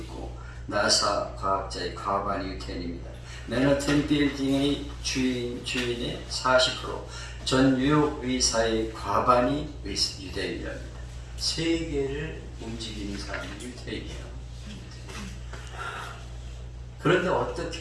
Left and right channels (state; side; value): identical; both; correlation 1.00